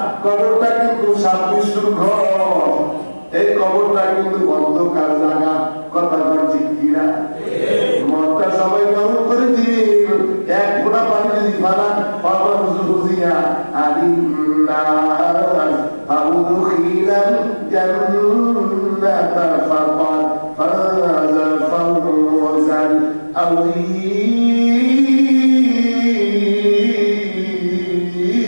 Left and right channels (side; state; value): both; inverted; correlation -1.00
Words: কবরটা কিন্তু সাবমিশুর ঘর, এই কবরটা কিন্তু অন্ধকার জায়গা। কথা বলছি কিনা? মনটা সবাই গরম করে দিবি, এক ফোঁটা পানি যদি ফালান বুঝিয়া আলিন্নাস আউদখিলাল জান্নাতা ফাকাদ ফাযা ফাওজান